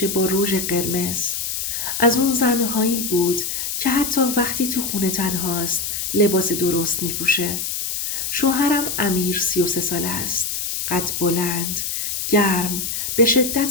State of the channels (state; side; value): noise; left; hiss, 3 dB below the sound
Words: با رژ قرمز. از اون زنهایی بود که حتی وقتی تو خونه تنهاست لباس درست میپوشه. شوهرم امیر 33 ساله است. قد بلند، گرم، به